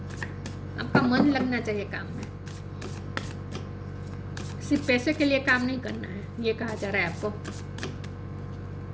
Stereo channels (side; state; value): both; identical; correlation 1.00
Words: आपका मन लगना चाहिए काम में, सिर्फ पैसे के लिए काम नहीं करना है, ये कहा जा रहा है आपको।